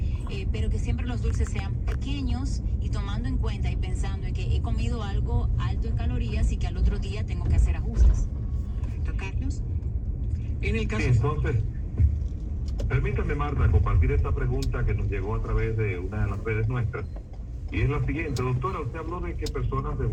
pero que siempre los dulces sean pequeños y tomando en cuenta y pensando en que he comido algo alto en calorías y que al otro día tengo que hacer ajustes. Carlos. En el caso... Sí, entonces, permítame, Marta, compartir esta pregunta que nos llegó a través de una de las redes nuestras. Y es la siguiente, doctora, usted habló de que personas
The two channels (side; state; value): both; identical; correlation 1.00